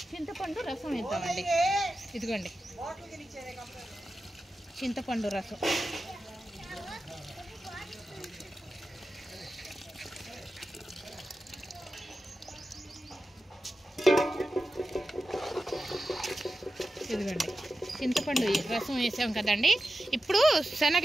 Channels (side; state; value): both; normal; correlation 0.92